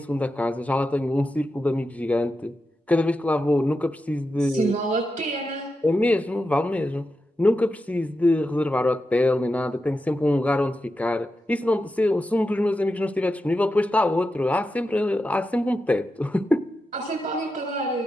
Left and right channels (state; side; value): normal; both; correlation 0.89